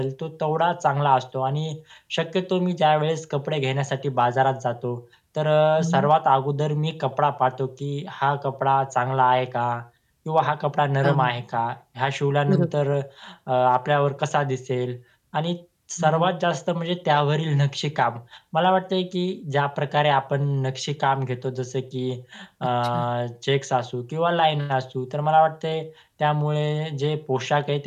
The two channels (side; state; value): both; identical; correlation 1.00